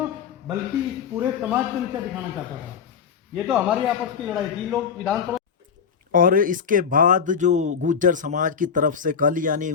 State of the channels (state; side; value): quieter; right; 6.8 dB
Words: बल्कि पूरे समाज को नीचा दिखाना चाहता था। ये तो हमारी आपस की लड़ाई थी। लोग विधानसभा और इसके बाद जो गुर्जर समाज की तरफ से कल यानी